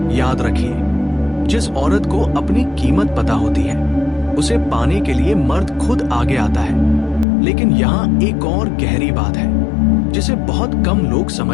याद रखिए, जिस औरत को अपनी कीमत पता होती है उसे पाने के लिए मर्द खुद आगे आता है। लेकिन यहाँ एक और गहरी बात है जिसे बहुत कम लोग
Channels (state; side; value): drops out; right; at 7.2 s